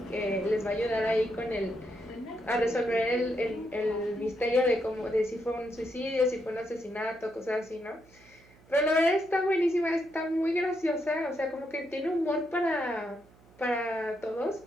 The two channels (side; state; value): right; noise; hum, 27 dB below the sound